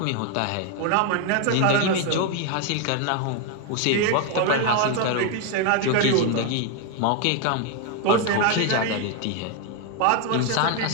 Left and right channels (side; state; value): both; different; correlation 0.01